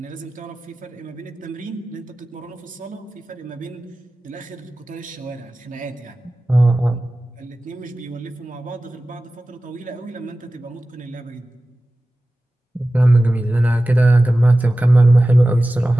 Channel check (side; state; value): both; normal; correlation 0.96